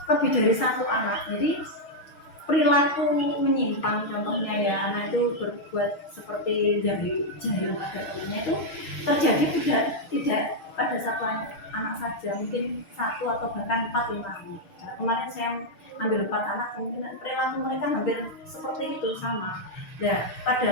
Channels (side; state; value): right; late; 6.4 ms